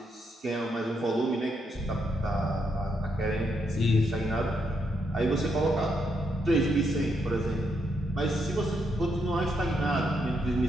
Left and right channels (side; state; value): both; normal; correlation 0.79